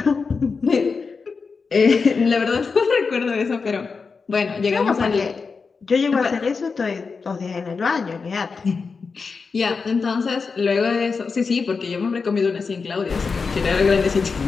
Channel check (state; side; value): quieter; right; 4.9 dB